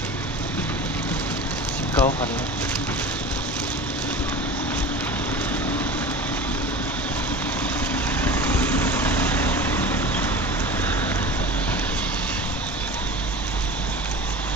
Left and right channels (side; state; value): both; normal; correlation 0.35